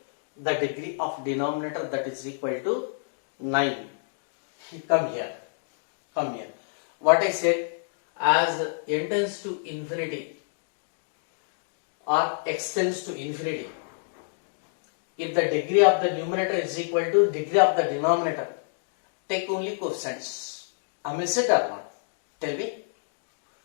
the degree of denominator, that is equal to 9. Come here. What I said, as n tends to infinity or x tends to infinity, if the degree of the numerator is equal to degree of the denominator, take only coefficients. Am I it or not? Tell me.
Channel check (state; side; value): silent; right; digital silence